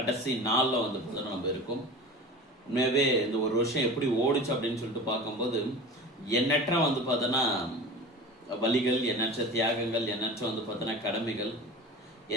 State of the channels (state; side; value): normal; both; correlation 0.34